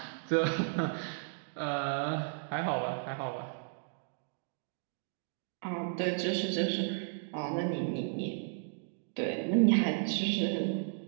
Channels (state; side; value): silent; left; digital silence